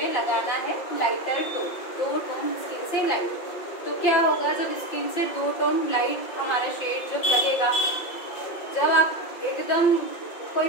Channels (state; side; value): late; right; 5.7 ms